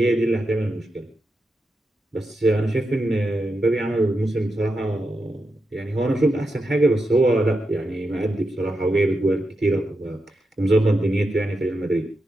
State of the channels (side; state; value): both; normal; correlation 0.87